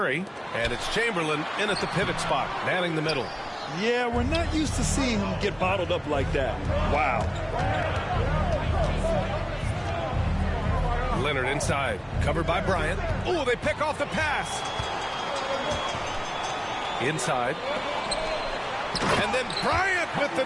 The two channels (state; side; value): identical; both; correlation 1.00